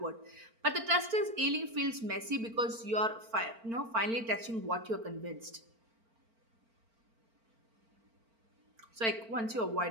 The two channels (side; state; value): left; late; 4.4 ms